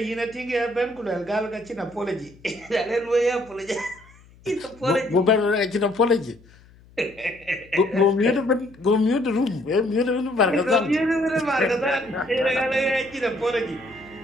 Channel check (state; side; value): noise; left; hum, 26 dB below the sound